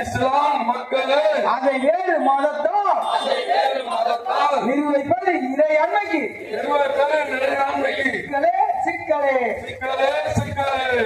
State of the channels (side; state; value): both; identical; correlation 1.00